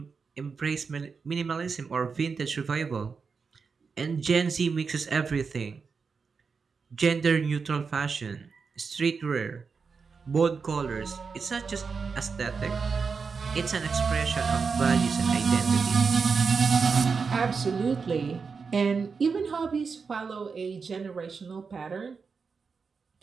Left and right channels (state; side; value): quieter; left; 5.2 dB